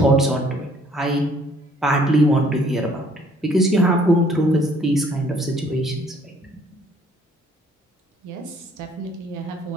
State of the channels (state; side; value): normal; both; correlation 0.61